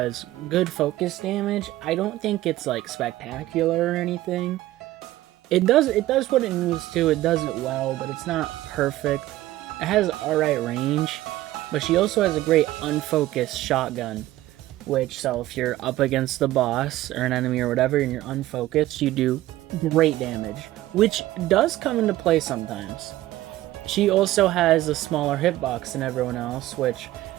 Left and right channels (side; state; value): left; quieter; 15.7 dB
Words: good focus damage. I don't think it's like spectacular or anything. It does what it needs to. It does it well, but it's not perfect. It has alright range, but she also has a great unfocused shotgun. So if you're up against the boss or an enemy or whatever and you're unfocused, you do great damage, which does come into play sometimes. She also has a smaller hitbox than everyone else, which